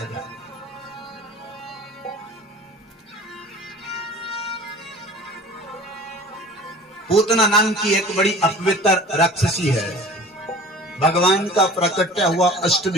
जाए। पूतना नाम की एक बड़ी अपवित्र राक्षसी है। भगवान का प्राकट्य हुआ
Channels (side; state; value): both; normal; correlation 0.43